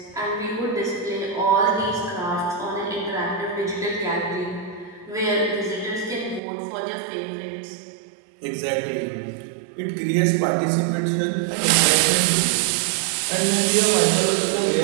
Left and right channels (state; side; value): drops out; left; at 6.4 s